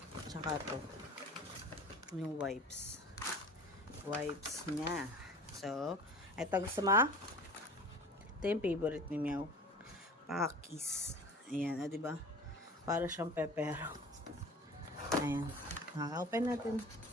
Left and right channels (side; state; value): both; normal; correlation 0.41